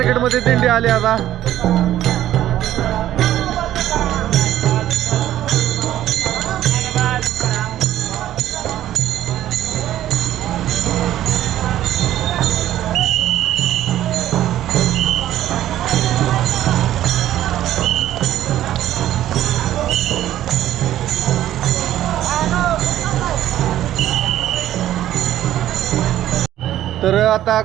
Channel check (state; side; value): quieter; left; 12.7 dB